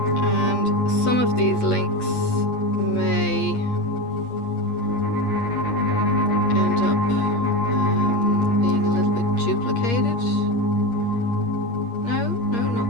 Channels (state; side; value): late; right; 8.5 ms